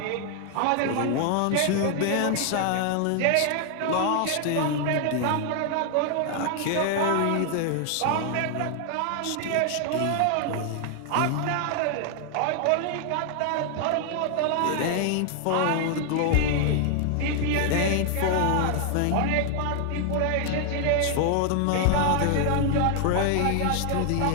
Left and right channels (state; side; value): different; both; correlation 0.00